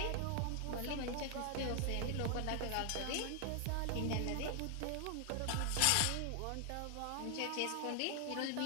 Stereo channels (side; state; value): both; different; correlation 0.00